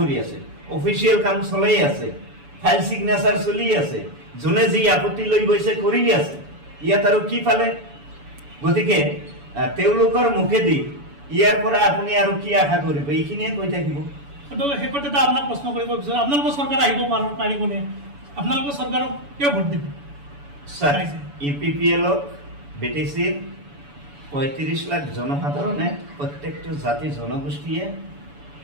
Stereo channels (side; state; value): left; late; 7.0 ms